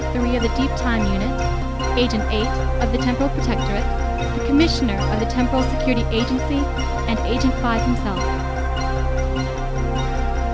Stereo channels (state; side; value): identical; both; correlation 1.00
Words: 3 of the Deep Time Unit, Agent 8 of the Temporal Protectorate, the Commissioner of the Temporal Security Agency, and Agent 5 himself.